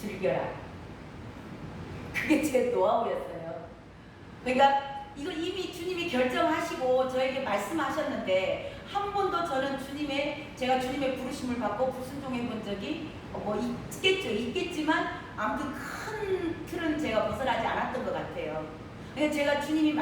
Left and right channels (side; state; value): both; identical; correlation 1.00